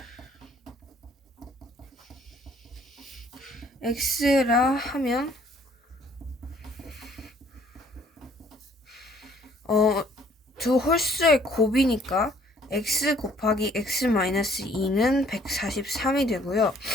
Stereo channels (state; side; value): normal; both; correlation 0.60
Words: x라 하면 두 홀수의 곱이니까 x 곱하기 x-2는 143이 되고요.